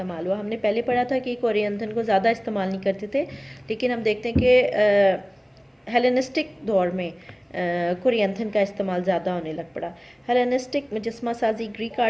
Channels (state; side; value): identical; both; correlation 1.00